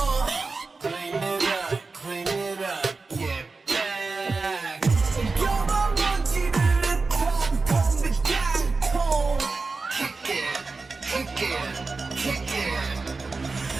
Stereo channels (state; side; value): quieter; left; 4.0 dB